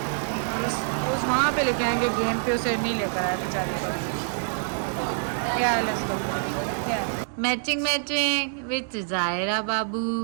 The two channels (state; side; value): silent; left; 60 dB below the other